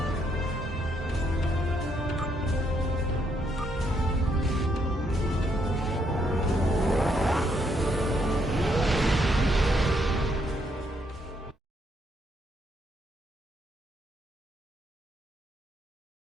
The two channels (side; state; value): both; normal; correlation 0.74